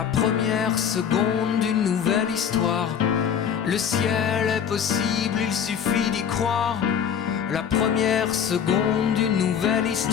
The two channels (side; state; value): right; quieter; 8.0 dB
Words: première seconde d'une nouvelle histoire, le ciel est possible, il suffit d'y croire. La première seconde d'une nouvelle